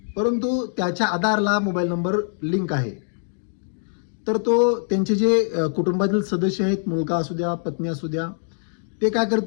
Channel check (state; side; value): silent; right; digital silence